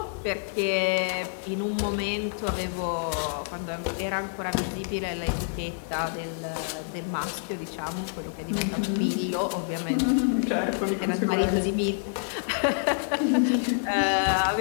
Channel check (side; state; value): right; silent; digital silence